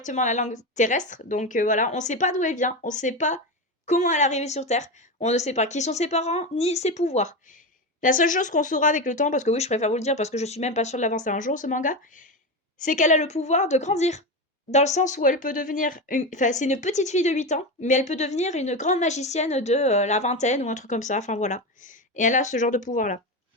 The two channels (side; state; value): both; normal; correlation 0.18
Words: la langue terrestre. Donc voilà, on ne sait pas d'où elle vient, on ne sait pas comment elle est arrivée sur Terre, on ne sait pas qui sont ses parents, ni ses pouvoirs. La seule chose qu'on saura avec le temps, parce que oui, je préfère vous le dire, parce que je suis même pas sûre de l'avancer un jour, ce manga, c'est qu'elle a le pouvoir de grandir. Dans le sens où elle peut devenir. Enfin, c'est une petite fille de 8 ans, mais elle peut devenir une grande magicienne de la vingtaine ou un truc comme ça. Enfin voilà. Et elle a ce genre de pouvoir-là.